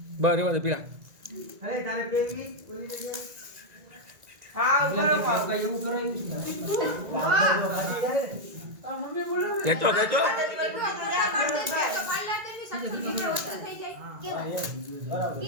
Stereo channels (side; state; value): left; late; 1.9 ms